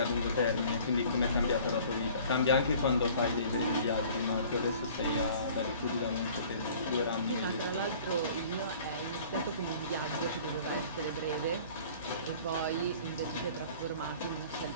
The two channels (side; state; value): both; inverted; correlation -0.49